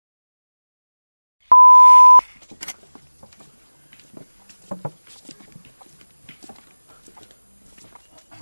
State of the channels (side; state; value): both; inverted; correlation -1.00